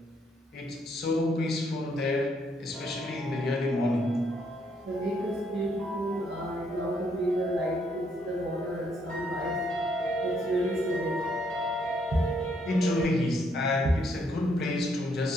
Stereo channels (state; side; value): normal; both; correlation 0.71